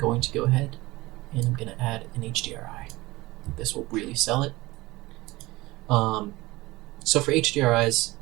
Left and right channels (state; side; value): quieter; left; 20.3 dB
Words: to go ahead and I'm going to add an HDRI. This will really sell it. So for HDRIs,